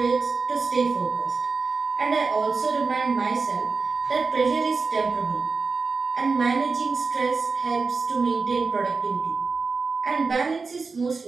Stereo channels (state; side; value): quieter; left; 4.5 dB